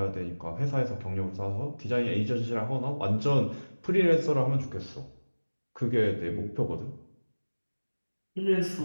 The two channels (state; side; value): inverted; both; correlation -1.00